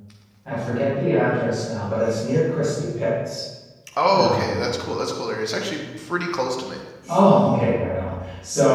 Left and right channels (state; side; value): identical; both; correlation 1.00